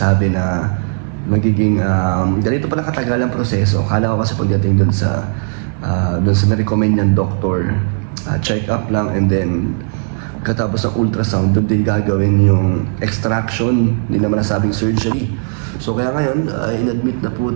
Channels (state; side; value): silent; left; 56 dB below the other